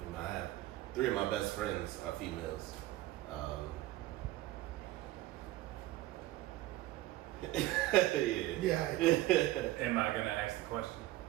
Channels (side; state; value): left; quieter; 16.5 dB